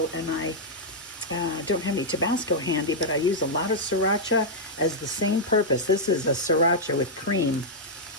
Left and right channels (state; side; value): normal; both; correlation -0.06